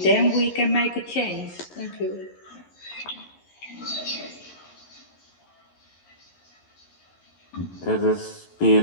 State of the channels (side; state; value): right; late; 11 ms